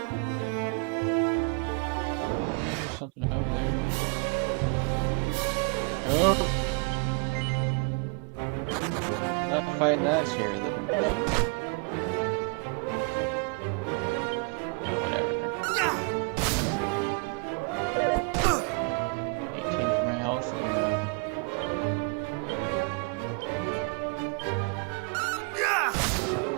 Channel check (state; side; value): quieter; left; 35.5 dB